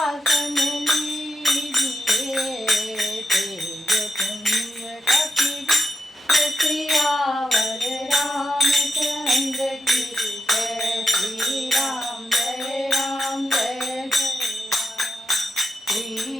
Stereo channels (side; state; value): both; normal; correlation 0.85